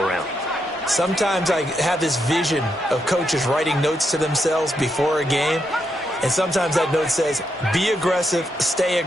Sometimes I have this vision of coaches writing notes to themselves before a game, and sometimes that note says, be aggressive, stay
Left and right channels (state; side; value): normal; both; correlation 0.81